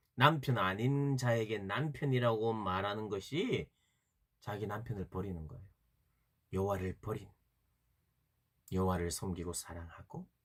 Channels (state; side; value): identical; both; correlation 1.00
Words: 남편 아닌 자에게 남편이라고 말하는 것이 자기 남편을 버리는 거예요. 여호와를 버린, 여호와를 섬기고 사랑하고